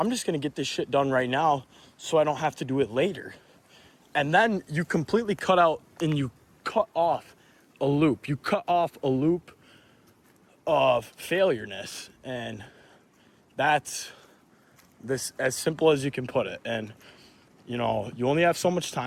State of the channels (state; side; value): identical; both; correlation 1.00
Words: just going to get this shit done right now so I don't have to do it later. And then you completely cut out and you cut off a loop. You cut off a loop of failureness. And that's this as simple as you can put it. And you know, you only have so much